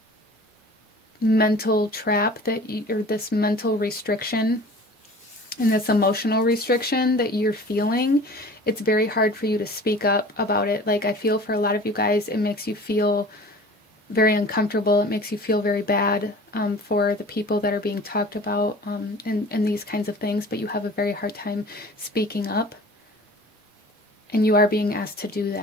mental trap that or this mental restriction and this emotional restriction that you're feeling, it's very hard for you to speak up about it. Like, I feel for a lot of you guys, it makes you feel very uncomfortable. It makes you feel very bad for the people that are being talked about and these kinds of things, but you have a very hard time speaking up. And you are being asked to do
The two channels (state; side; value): normal; both; correlation 0.43